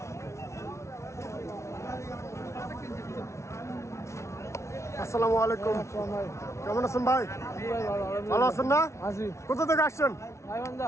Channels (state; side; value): late; right; 0.13 ms